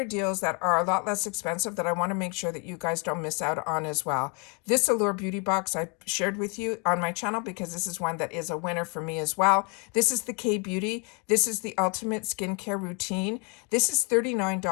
deals that are a lot less expensive that I want to make sure that you guys don't miss out on as well. This Allure Beauty Box I shared with you on my channel because this is one that is a winner for me as well. This is the K-Beauty. This is the Ultimate Skincare Routine. This is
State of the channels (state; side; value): quieter; right; 32.3 dB